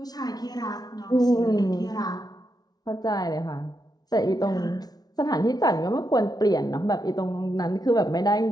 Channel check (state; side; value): late; right; 0.19 ms